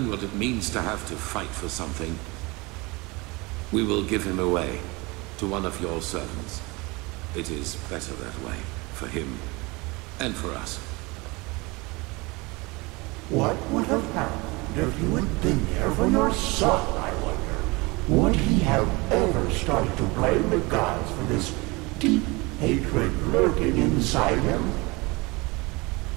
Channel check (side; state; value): left; quieter; 25.0 dB